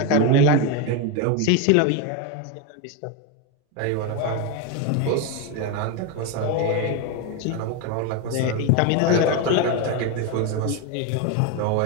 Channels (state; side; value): different; both; correlation 0.02